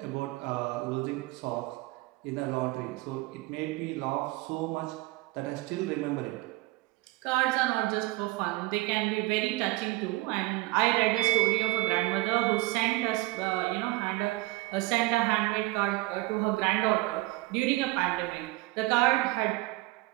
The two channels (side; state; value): left; quieter; 20.3 dB